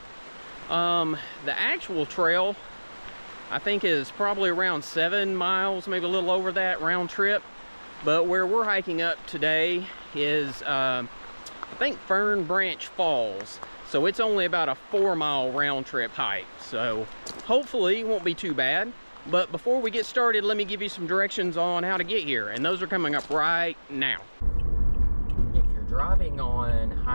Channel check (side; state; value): both; inverted; correlation -1.00